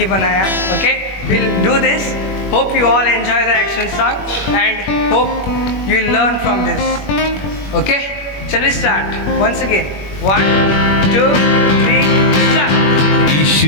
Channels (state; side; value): late; right; 21 ms